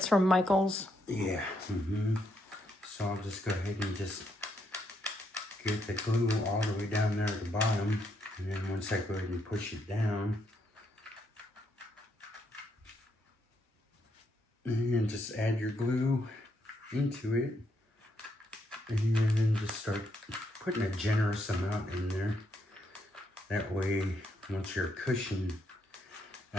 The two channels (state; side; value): normal; both; correlation 0.76